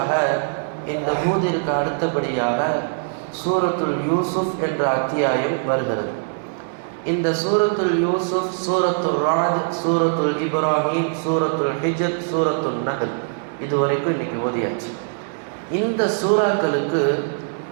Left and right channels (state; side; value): silent; left; digital silence